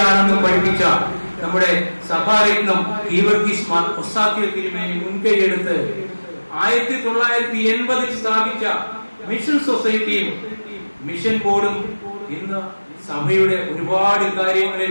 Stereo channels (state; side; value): inverted; both; correlation -1.00